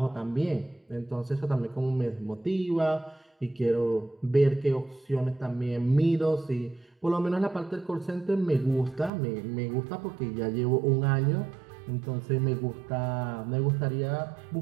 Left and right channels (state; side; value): drops out; left; at 9.1 s